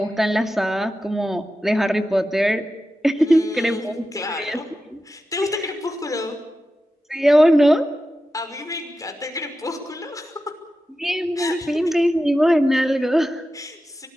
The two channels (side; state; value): both; normal; correlation 0.92